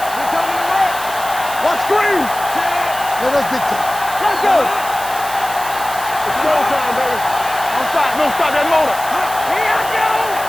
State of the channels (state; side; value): noise; right; hiss, 11 dB below the sound